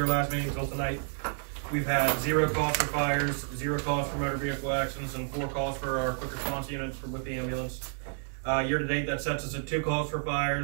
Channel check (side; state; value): left; silent; 58 dB below the other